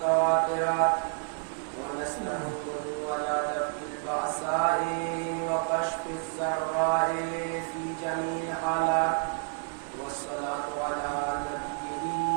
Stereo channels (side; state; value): left; silent; 58 dB below the other